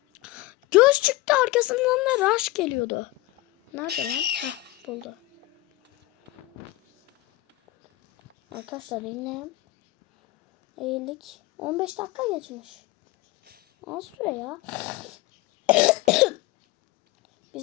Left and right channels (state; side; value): quieter; right; 18.9 dB